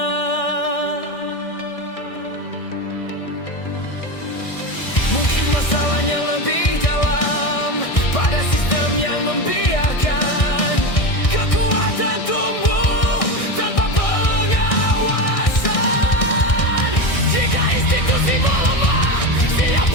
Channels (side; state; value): right; late; 1.6 ms